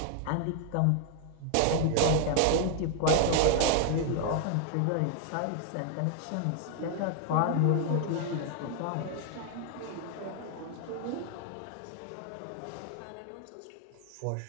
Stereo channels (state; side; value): different; both; correlation 0.00